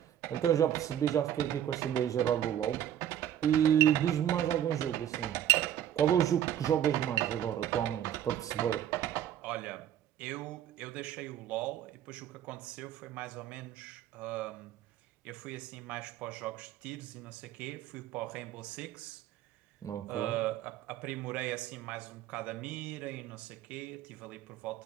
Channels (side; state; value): left; quieter; 10.8 dB